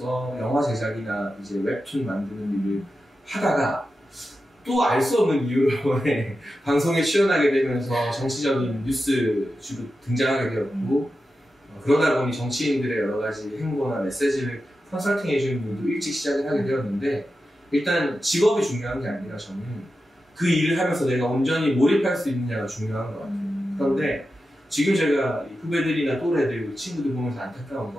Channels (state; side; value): normal; both; correlation 0.91